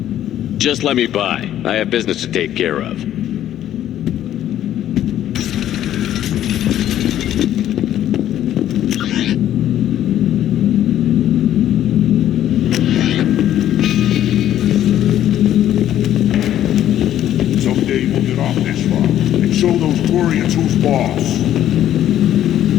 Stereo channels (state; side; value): quieter; right; 11.7 dB